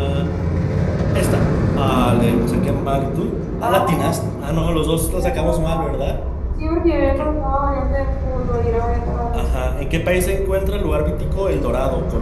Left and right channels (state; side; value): identical; both; correlation 1.00